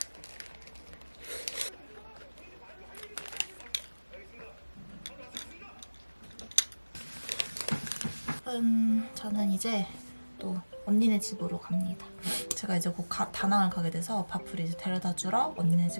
저는 이제 또 언니네 집으로 갑니다. 제가 이제 곧 다낭을 가게 돼서 밥을 이제 데려다 주러 언니네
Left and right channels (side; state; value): both; inverted; correlation -1.00